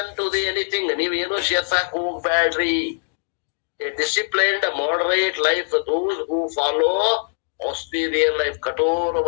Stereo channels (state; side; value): silent; right; digital silence